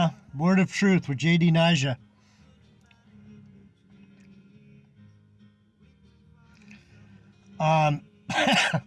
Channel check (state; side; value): identical; both; correlation 1.00